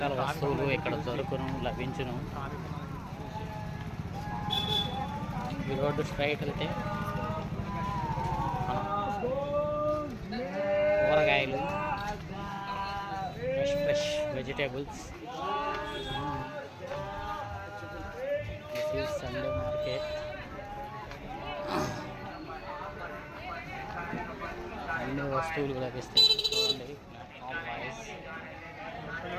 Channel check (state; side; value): identical; both; correlation 1.00